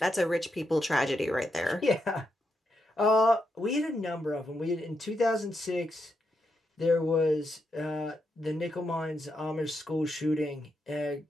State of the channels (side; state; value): both; normal; correlation 0.83